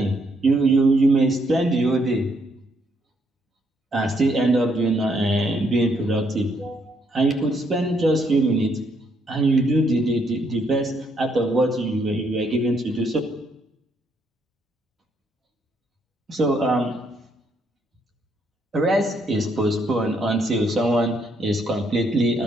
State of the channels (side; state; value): both; normal; correlation 0.73